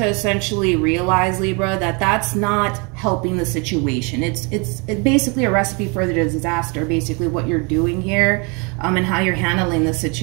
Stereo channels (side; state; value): left; quieter; 31.7 dB